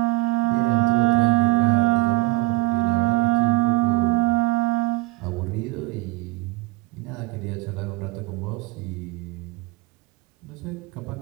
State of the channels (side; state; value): left; quieter; 21.7 dB